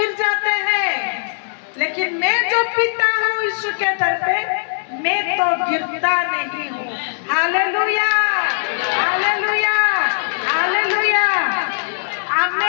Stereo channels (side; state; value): right; silent; digital silence